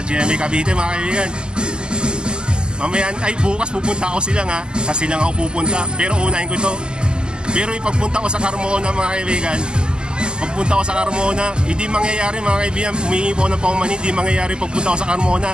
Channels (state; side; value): late; left; 0.047 ms